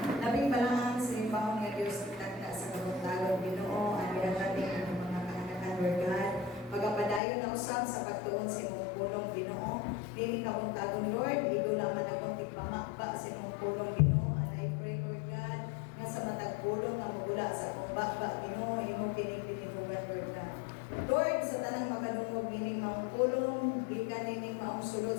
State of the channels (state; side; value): drops out; right; at 7.2 s